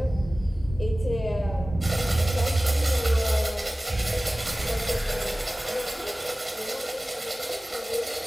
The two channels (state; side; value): normal; both; correlation 0.97